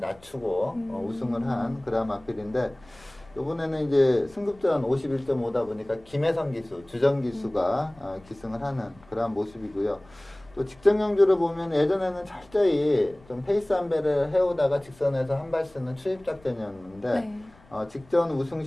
우승을 한 그런 마필인데 이번에는 이제 승급전 51.5다 보니까 김혜성 기수, 주정 기수가 기승을 하는 그러한 모습이고요. 또 직전 경주를 보면 예전에는 철저히 좀 페이스 한 배를 해오다가 직선에서 한 발 쓰는 추입 작전이었는데 네. 직전 우승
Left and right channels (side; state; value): left; noise; rumble, 27 dB below the sound